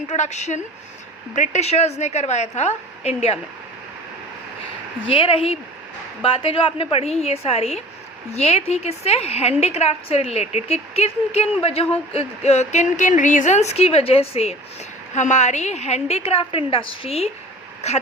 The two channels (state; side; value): normal; both; correlation 0.42